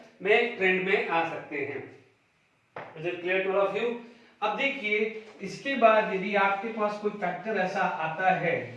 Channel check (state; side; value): identical; both; correlation 1.00